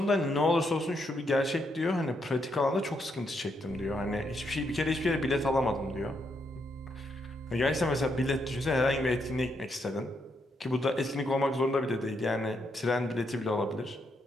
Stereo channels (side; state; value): both; normal; correlation 0.78